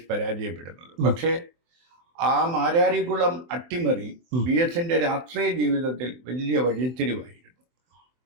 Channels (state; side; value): late; left; 24 ms